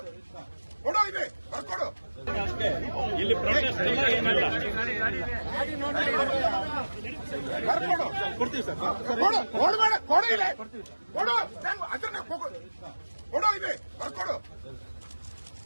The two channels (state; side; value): inverted; both; correlation -1.00